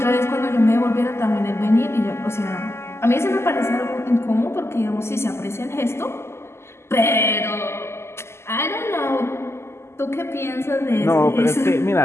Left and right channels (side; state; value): right; late; 0.12 ms